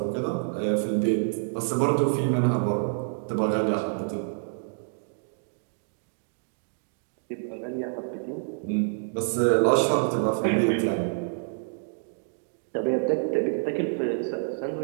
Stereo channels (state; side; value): silent; left; digital silence